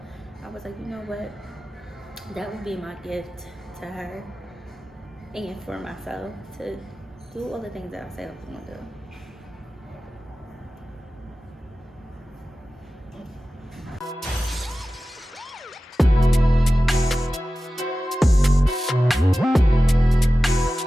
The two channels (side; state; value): both; normal; correlation 0.95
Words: I was like, you know what, that would be my gift to her and for myself, to do all the things that I said I was going to do.